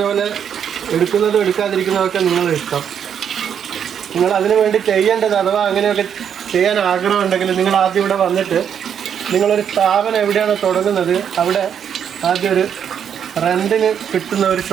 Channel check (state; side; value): quieter; left; 8.3 dB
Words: പോലെ എടുക്കുന്നതും എടുക്കാതിരിക്കുന്നതൊക്കെ നിങ്ങളുടെ ഇഷ്ടം. നിങ്ങൾ അതിനു വേണ്ടി ചെയ്യേണ്ടത്, അഥവാ അങ്ങനെയൊക്കെ ചെയ്യാൻ ആഗ്രഹമുണ്ടെങ്കിൽ നിങ്ങൾ ആദ്യം ഇവിടെ വന്നിട്ട് നിങ്ങളൊരു സ്ഥാപനം എവിടെയാണ് തുടങ്ങുന്നത് അവിടെ ആദ്യം ഒരു റെൻറ്റിന് കിട്ടുന്ന ഒരു